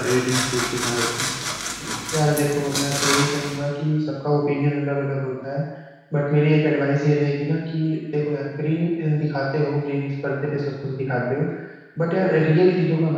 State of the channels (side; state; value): both; identical; correlation 1.00